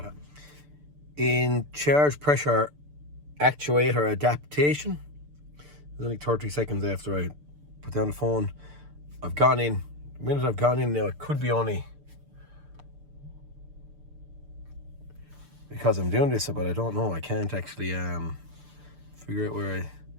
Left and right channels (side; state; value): left; late; 6.8 ms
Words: In charge pressure actuator adaptation, there's only 30 seconds after I put down the phone. I've gone in. The minute I've gone in now, it could be only because I'm doing this, but I don't know. I can't actually figure out where